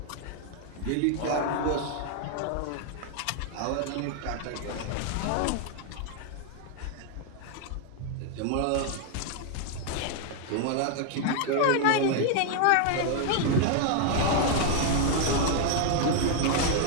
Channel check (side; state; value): both; different; correlation 0.00